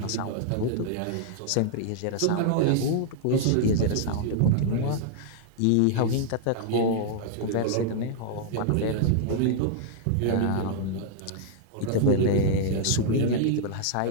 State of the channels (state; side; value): different; both; correlation -0.01